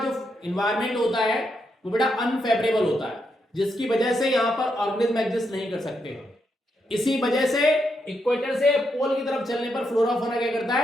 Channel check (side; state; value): both; normal; correlation 0.81